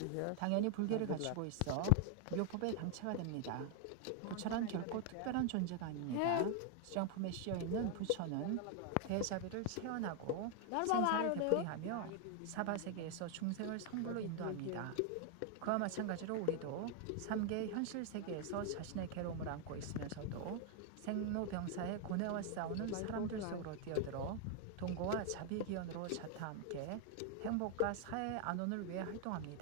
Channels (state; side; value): different; both; correlation 0.00